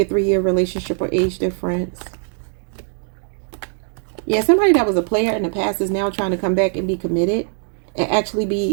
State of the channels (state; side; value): silent; left; 56 dB below the other